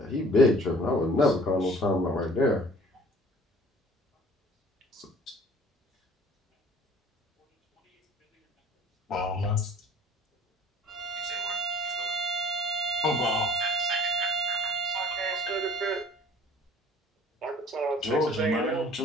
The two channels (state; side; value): normal; both; correlation 0.50